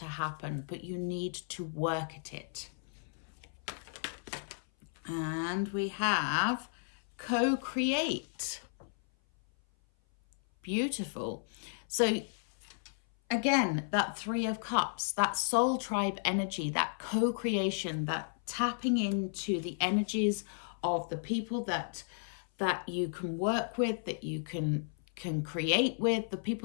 happen, but you need to work at it. And we have co-create. Beautiful. So again, that 3 of Cups, that soul tribe energy, that co-creation, that tapping into the energies of the people that you can work with, that you can create with, the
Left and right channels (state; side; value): silent; right; 55 dB below the other